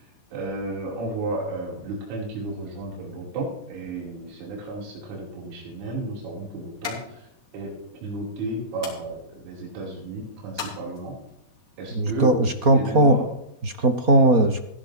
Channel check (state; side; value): late; left; 4.2 ms